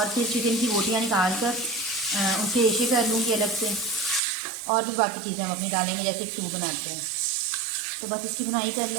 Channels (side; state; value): left; drops out; at 4.2 s